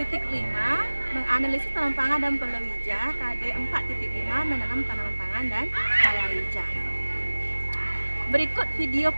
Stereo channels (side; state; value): both; inverted; correlation -1.00